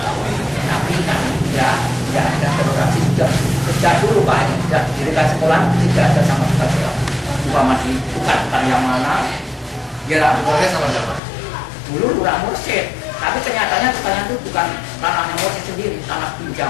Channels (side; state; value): right; drops out; at 11.2 s